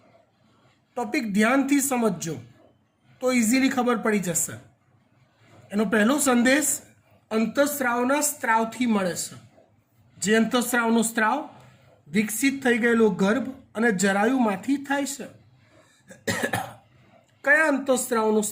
ટોપિક ધ્યાનથી સમજજો તો ઇઝીલી ખબર પડી જશે. એનો પહેલો સંદેશ અંતઃસ્ત્રાવના સ્ત્રાવથી મળે છે. જે અંતઃસ્ત્રાવનો સ્ત્રાવ વિકસિત થઈ ગયેલો ગર્ભ અને જરાયુમાંથી થાય છે. કયા અંતઃસ્ત્રાવનો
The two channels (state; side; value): identical; both; correlation 1.00